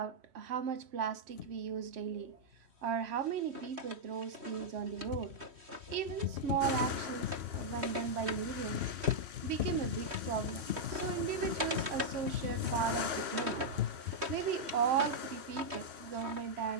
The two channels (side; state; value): left; late; 3.2 ms